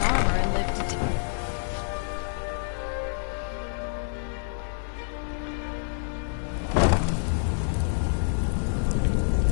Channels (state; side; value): silent; right; digital silence